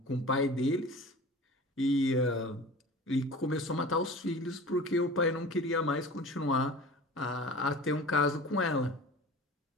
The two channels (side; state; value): both; normal; correlation 0.39